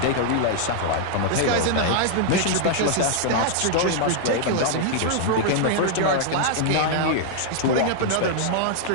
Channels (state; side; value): different; both; correlation -0.01